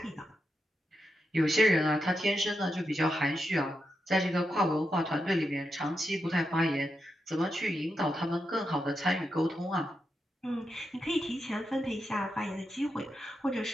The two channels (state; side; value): normal; both; correlation 0.86